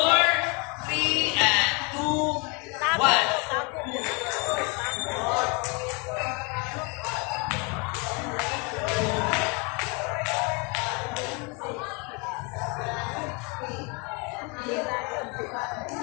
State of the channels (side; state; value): right; quieter; 30.3 dB